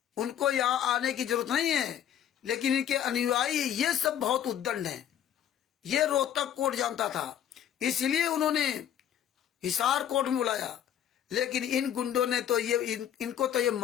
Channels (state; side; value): quieter; right; 10.1 dB